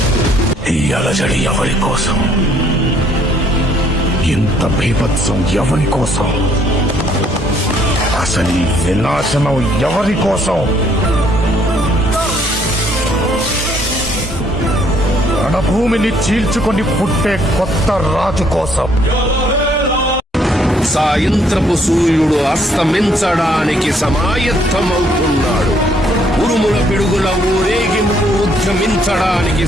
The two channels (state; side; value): normal; both; correlation 0.66